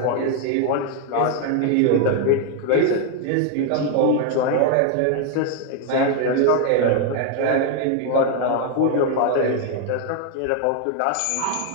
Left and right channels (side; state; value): both; different; correlation 0.01